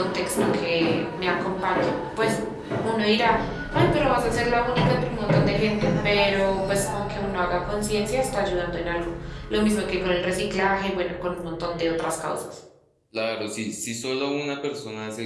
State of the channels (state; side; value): identical; both; correlation 1.00